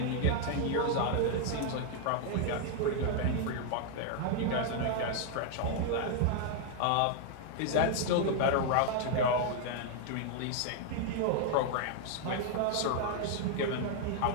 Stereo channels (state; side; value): different; both; correlation 0.00